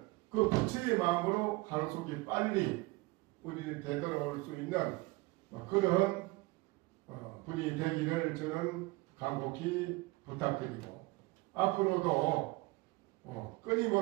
그 부처의 마음으로 하루속히 빨리 우리 되돌아올 수 있는 그런 분이 되기를 저는 간곡히 부탁드리고, 앞으로도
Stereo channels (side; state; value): left; quieter; 22.4 dB